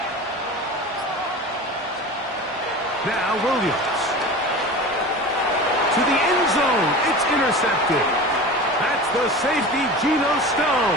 Now Williams. To the end zone. It's intercepted. That's the safety, Geno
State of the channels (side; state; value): both; normal; correlation 0.33